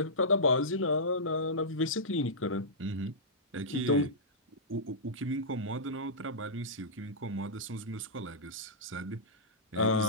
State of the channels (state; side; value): normal; both; correlation -0.15